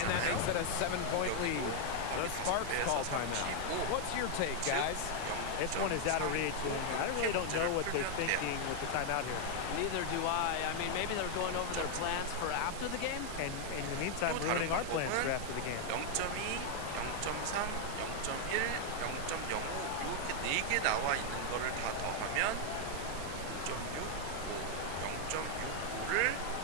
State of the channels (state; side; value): different; both; correlation 0.00